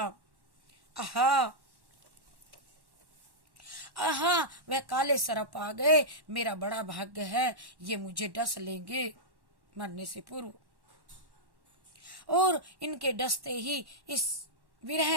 आहा आहा, वह काले सर्प आ गए। मेरा बड़ा भाग्य है, ये मुझे डस लेंगे मरने से पूर्व, और इनके डसते ही इस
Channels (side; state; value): left; late; 1.1 ms